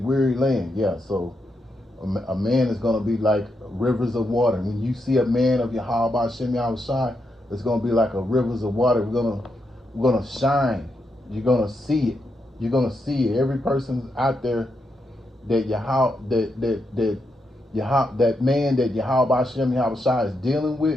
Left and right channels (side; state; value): both; normal; correlation 0.82